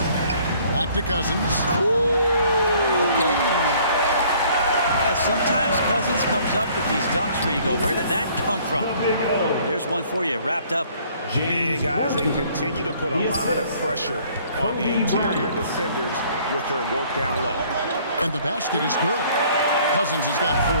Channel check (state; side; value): inverted; both; correlation -0.58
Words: Back to Cousins. Okay. Yeah, sometimes Cousins comes up with these dunks where you go, where did that come from? There's one for you, wrapped up. And guys, they continue to put a lot of pressure on the interior defenders with their work down low. And the basket is good. Cousins has got